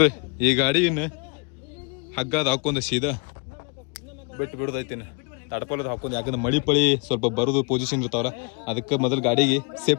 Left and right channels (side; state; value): right; quieter; 32.9 dB